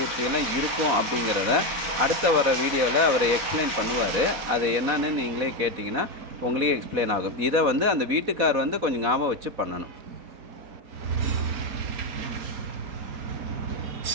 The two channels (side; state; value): left; late; 4.1 ms